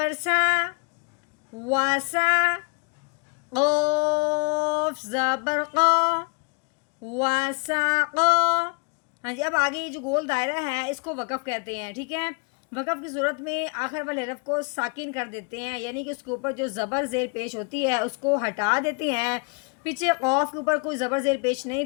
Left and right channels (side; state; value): right; quieter; 33.8 dB